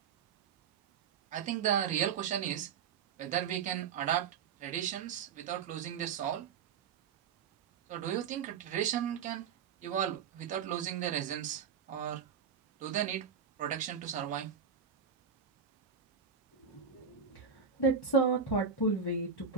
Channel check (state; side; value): quieter; left; 6.6 dB